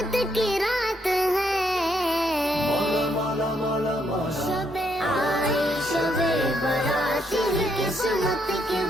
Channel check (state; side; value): normal; both; correlation 0.74